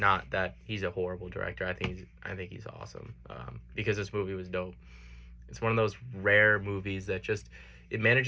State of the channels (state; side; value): identical; both; correlation 1.00